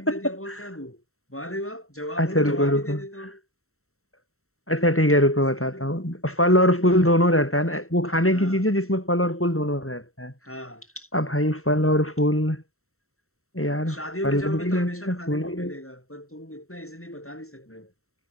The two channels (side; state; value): right; late; 0.63 ms